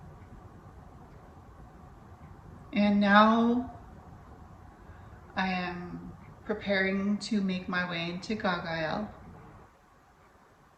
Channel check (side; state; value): both; identical; correlation 1.00